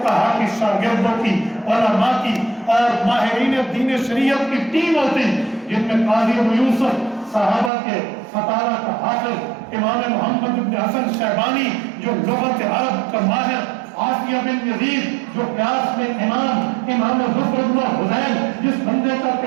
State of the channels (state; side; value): drops out; left; at 7.7 s